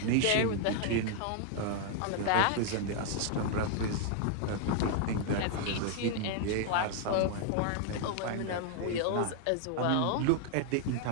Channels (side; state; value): both; different; correlation 0.00